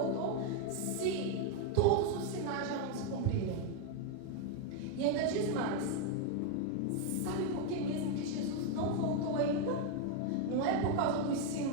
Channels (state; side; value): different; both; correlation 0.01